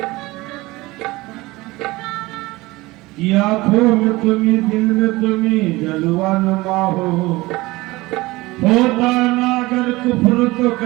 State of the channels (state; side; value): quieter; left; 20.7 dB